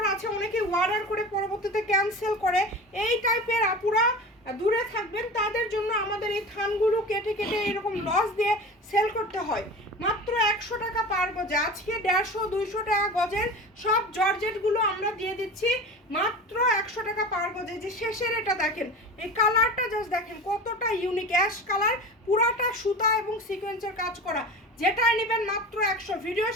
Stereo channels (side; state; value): both; normal; correlation 0.33